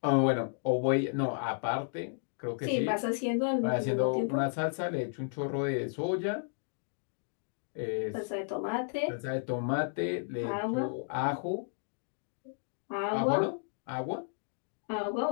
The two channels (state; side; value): silent; right; digital silence